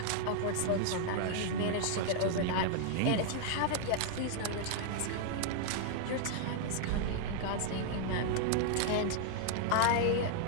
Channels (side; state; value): both; different; correlation 0.00